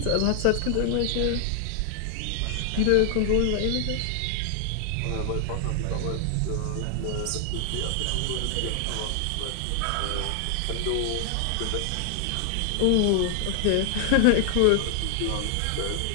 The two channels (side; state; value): both; different; correlation 0.00